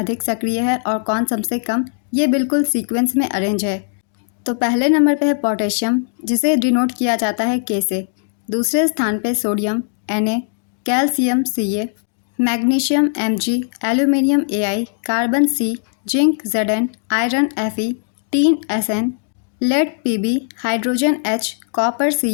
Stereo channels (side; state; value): right; silent; digital silence